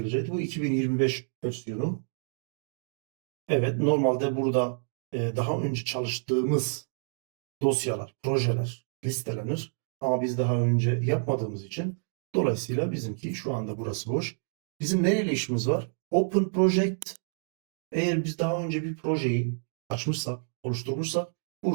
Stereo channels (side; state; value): left; silent; digital silence